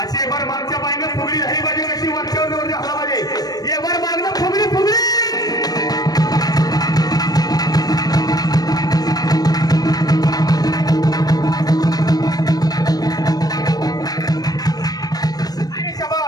एक बार मागच्या पायनं फुगडी झाली पाहिजे कशी वरच्यावर जवळ झाला पाहिजे एक बार मागणं फुगडी फुगडी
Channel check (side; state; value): right; late; 0.19 ms